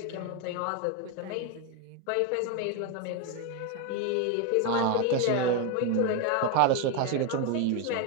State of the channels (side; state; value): both; different; correlation 0.02